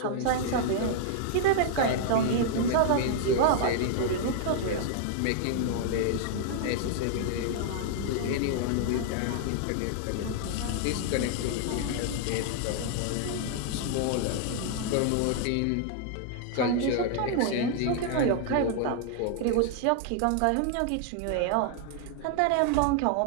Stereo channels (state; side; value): different; both; correlation 0.00